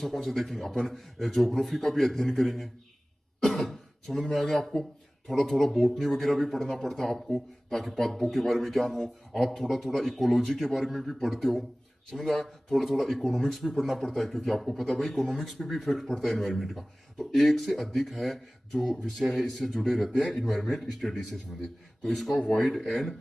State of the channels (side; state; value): both; normal; correlation 0.98